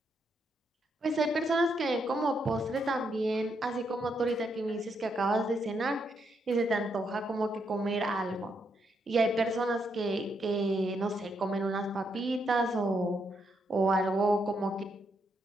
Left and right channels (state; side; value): normal; both; correlation 0.78